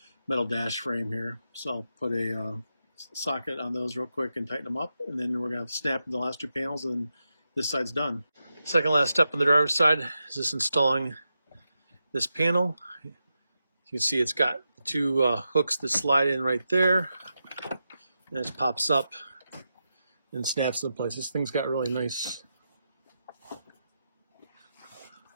metal dash frame here. So I'll put a socket on those real quick and tighten them up, and then we're going to snap the last 2 panels, and this side's done. Second last step on the driver's side is just installing this panel. You can see it's got 2 hooks that slide in right there, and it pops up and snaps into place. This thing's got really nice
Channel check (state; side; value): inverted; both; correlation -0.88